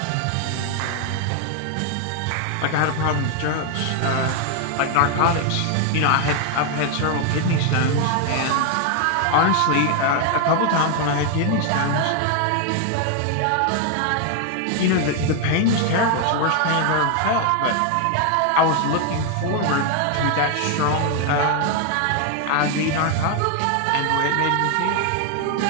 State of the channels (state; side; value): different; both; correlation 0.01